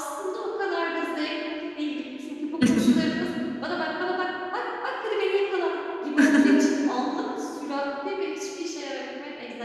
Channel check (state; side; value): identical; both; correlation 1.00